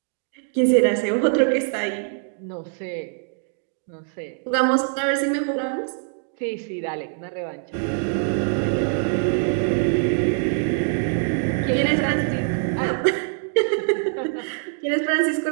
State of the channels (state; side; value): silent; left; 61 dB below the other